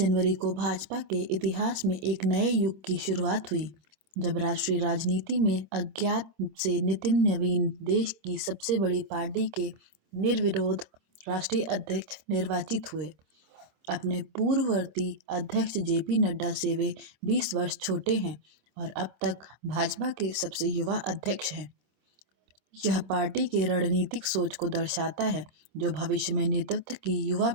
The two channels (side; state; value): left; late; 27 ms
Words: को भाजपा के इतिहास में एक नए युग की शुरुआत हुई, जब राष्ट्रीय राजनीति में अज्ञात से नितिन नवीन देश की सबसे बड़ी पार्टी के निर्विरोध राष्ट्रीय अध्यक्ष निर्वाचित हुए। अपने पूर्ववर्ती अध्यक्ष जेपी नड्डा से वे 20 वर्ष छोटे हैं और अब तक भाजपा के सबसे युवा अध्यक्ष हैं। यह पार्टी की रणनीतिक सोच को दर्शाता है, जो भविष्य में नेतृत्व की युवा